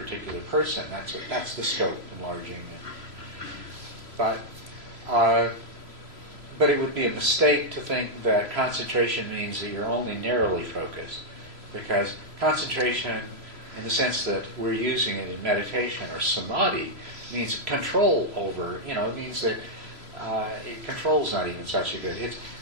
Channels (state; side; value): late; left; 3.0 ms